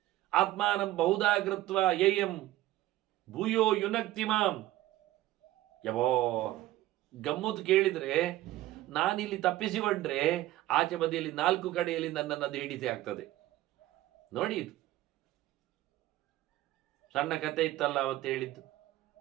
ಆತ್ಮಾನಂ ಬಹುಧಾ ಕೃತ್ವ ಯೇಯಂ ಭೂಯೋ ಯುನಕ್ತಿಮಾಂ. ಯವೋ ಗಮ್ಮತ್ತು ಕೇಳಿದ್ರೆ, ನಾನಿಲ್ಲಿ ತಪ್ಪಿಸಿಕೊಂಡ್ರೆ ಆಚೆ ಬದಿಯಲ್ಲಿ 4 ಕಡೆಯಲ್ಲಿ ನನ್ನನ್ನು ಅದು ಹಿಡಿಸಿ ಆಗ್ತದೆ. ನೋಡಿ, ಇದು ಸಣ್ಣ ಕತೆ ಇತ್ತಲ್ಲ ಅವತ್ತು ಹೇಳಿದ್ದು.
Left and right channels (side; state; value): left; quieter; 15.6 dB